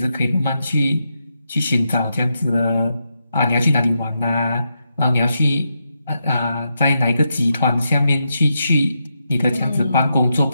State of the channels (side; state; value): both; inverted; correlation -0.84